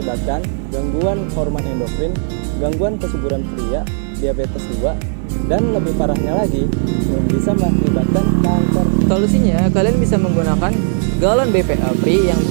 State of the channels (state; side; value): silent; left; 59 dB below the other